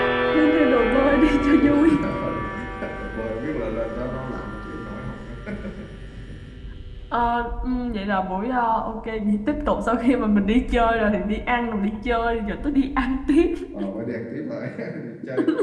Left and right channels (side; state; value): both; identical; correlation 1.00